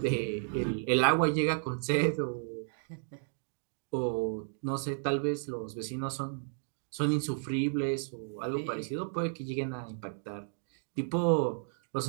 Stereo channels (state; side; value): silent; left; digital silence